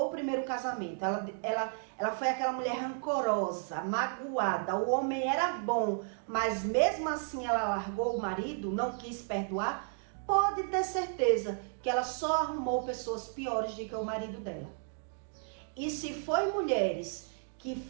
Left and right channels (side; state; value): left; silent; 56 dB below the other